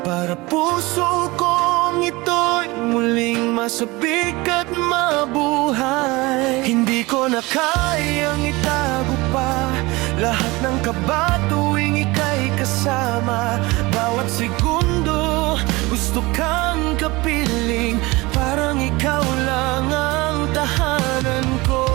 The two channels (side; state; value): left; quieter; 22.5 dB